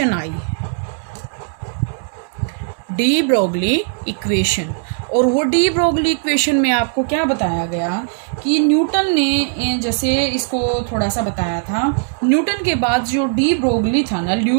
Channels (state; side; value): silent; left; digital silence